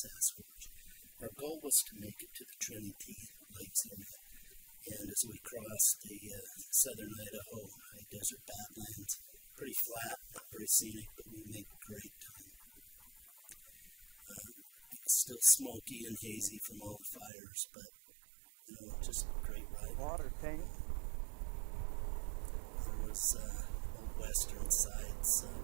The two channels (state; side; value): drops out; left; at 17.3 s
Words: Our goal was to make it to the Trinity Lakes area, and as we crossed the southern Idaho high desert badlands, pretty flat, not very scenic, but we made great time. It was still smoky and hazy from all the fires, but you know, just great riding. There was old western sites,